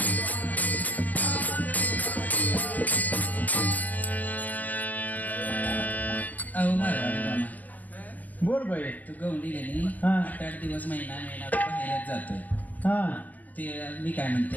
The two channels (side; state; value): right; late; 0.081 ms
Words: अहो मारवाडी मामा, बोल बाई. तू गवंडी गेली. हा. 8-8 दिवस महिना बाहेरच जातोय. हा ते मी काय म्हणते,